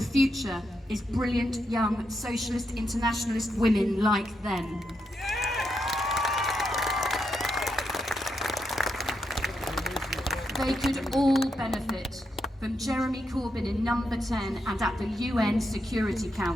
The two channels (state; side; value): normal; both; correlation 0.83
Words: future is brilliant young socialist internationalist women like them. They could all benefit from Jeremy Corbyn in number 10 and at the UN Security